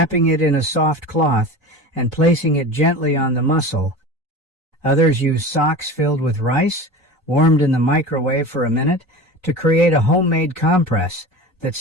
it in a soft cloth, and placing it gently on the muscle. Others use socks filled with rice, warmed in the microwave for a minute, to create a homemade compress that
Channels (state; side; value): normal; both; correlation 0.32